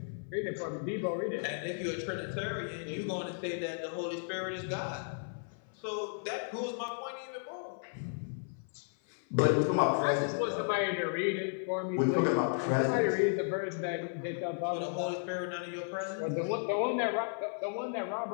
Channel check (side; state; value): right; silent; 55 dB below the other